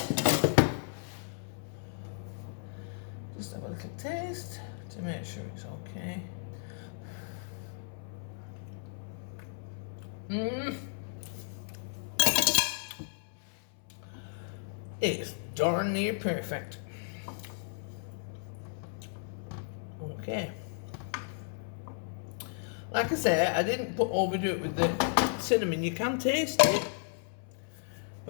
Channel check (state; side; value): silent; right; 55 dB below the other